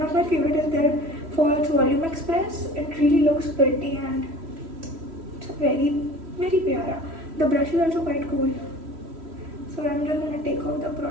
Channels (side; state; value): left; late; 3.1 ms